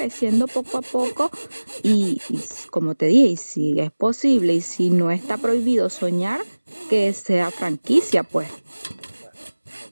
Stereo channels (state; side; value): inverted; both; correlation -1.00